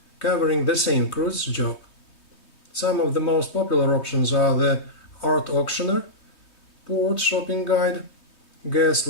covering the same cruise job. Some of the most popular options are the art auctioneer, port shopping guide, guest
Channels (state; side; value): late; right; 3.2 ms